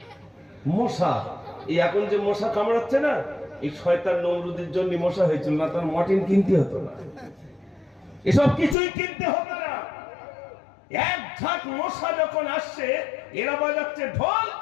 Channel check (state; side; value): drops out; right; at 8.8 s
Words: মশা, এই এখন যে মশা কামড়াচ্ছে না, এই শয়তান নমরুদের জন্য মশা হয়েছিল, না তার মর্টিন কিনতে হতো না, এসব কিছুই কিনতে হতো না। এক ঝাঁক মশা যখন আসছে, এরা বাজাচ্ছে ঢোল